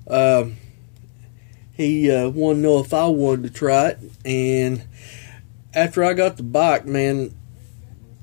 he wanted to know if I wanted to try it. And after I got the bike, man,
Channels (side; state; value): right; silent; digital silence